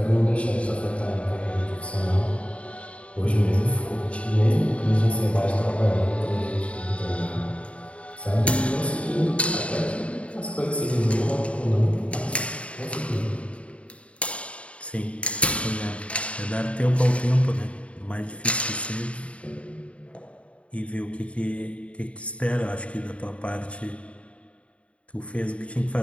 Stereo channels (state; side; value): late; right; 0.063 ms